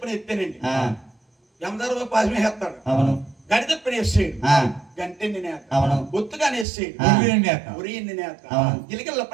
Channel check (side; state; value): left; drops out; at 6.7 s